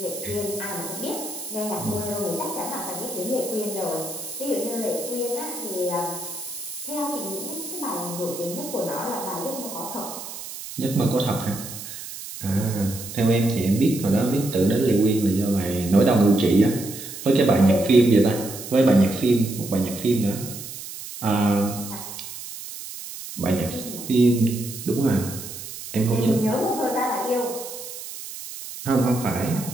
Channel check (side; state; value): right; noise; hiss, 11 dB below the sound